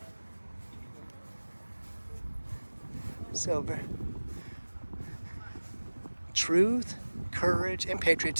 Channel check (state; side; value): inverted; both; correlation -1.00